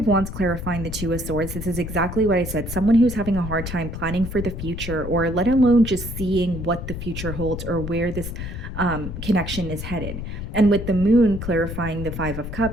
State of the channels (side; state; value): left; noise; rumble, 7 dB below the sound